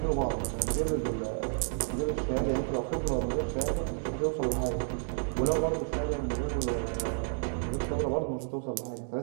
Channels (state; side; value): silent; left; 57 dB below the other